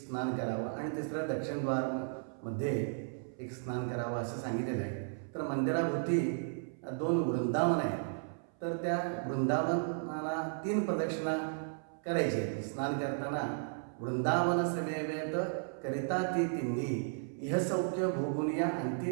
करावं आणि तिसरं दक्षिणद्वारमध्ये एक स्नान करावं असं सांगितलेलं आहे. तर मंदिराभोवती 2 वृंदावन आहेत. तर त्या वृंदावनाला 3 प्रदक्षिणा करायचे. स्नान करताना वृंदावन समेवेत करिता ती तिन्ही, इह सौख्य भोगुनिया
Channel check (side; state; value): left; silent; 55 dB below the other